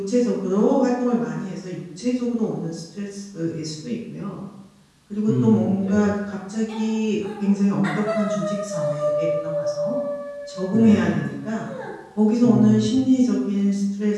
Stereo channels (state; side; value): identical; both; correlation 1.00